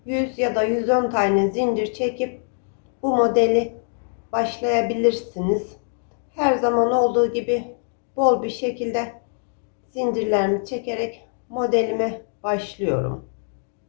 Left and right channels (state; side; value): silent; right; 63 dB below the other